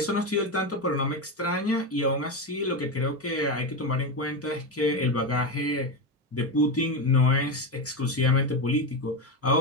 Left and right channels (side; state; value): both; normal; correlation 0.14